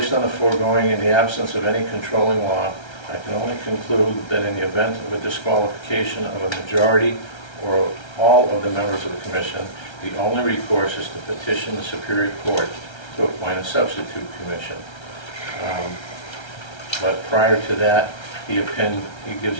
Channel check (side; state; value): right; late; 1.3 ms